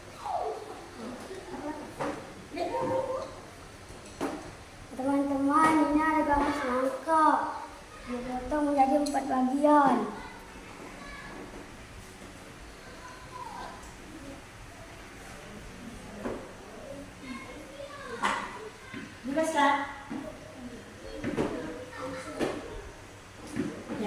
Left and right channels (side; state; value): both; identical; correlation 1.00